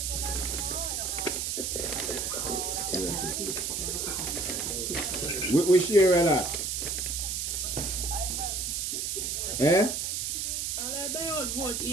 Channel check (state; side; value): noise; right; hiss, 1 dB below the sound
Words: Which area that? Eh? I vote